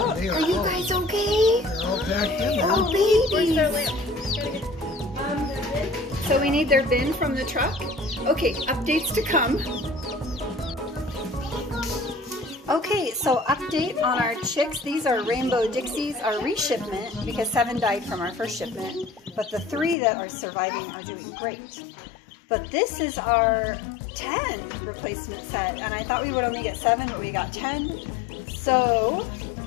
They Are you all, guys okay? they're all packed in there. Oh, where's babies. their lamp? So we need their bin from the truck. Okay, updates to come. Okay, so update on our chicks. These are Rainbow Dixies, our re-shipment, because 7 died from our first shipment. But the 3 that are surviving are doing great. But this is our 10 replacement set, and I thought we would only get 7, but we got 10. So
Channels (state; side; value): drops out; right; at 20.0 s